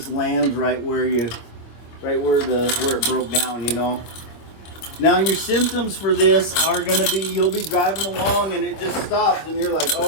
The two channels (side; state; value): right; late; 25 ms